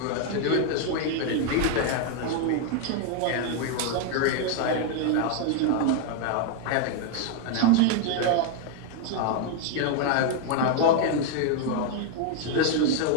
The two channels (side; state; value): both; different; correlation 0.00